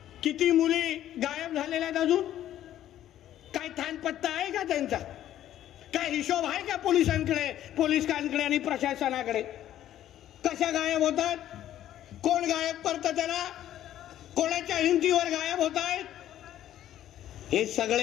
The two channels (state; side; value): quieter; right; 12.1 dB